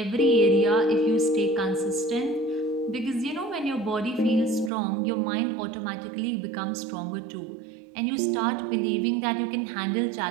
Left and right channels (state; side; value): drops out; left; at 4.7 s